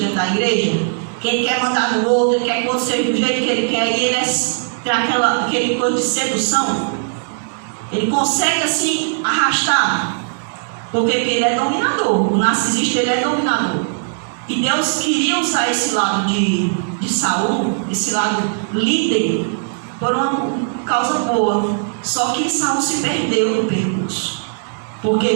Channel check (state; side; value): silent; left; digital silence